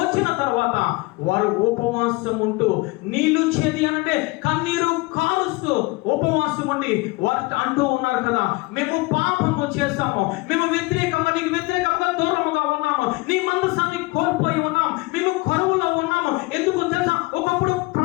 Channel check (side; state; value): right; quieter; 24.2 dB